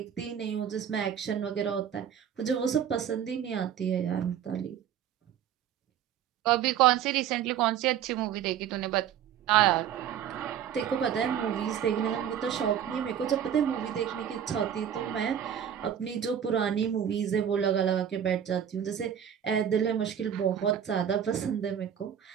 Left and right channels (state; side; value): quieter; left; 9.2 dB